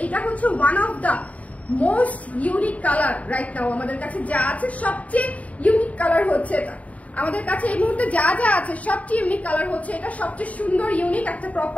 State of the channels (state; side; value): late; right; 0.069 ms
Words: এটা হচ্ছে one of the most unique colour right now. আমাদের কাছে যা আছে সবচেয়ে ইউনিক কালার হচ্ছে এটা। আমাদের কাছে এই মুহূর্তে যা যা আছে সবচেয়ে ইউনিক কালার হচ্ছে এটা, সবচেয়ে সুন্দর ইউনিক একটা